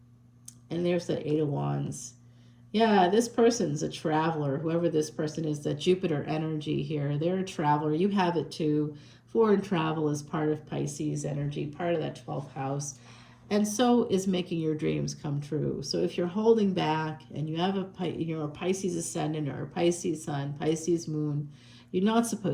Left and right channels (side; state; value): both; identical; correlation 1.00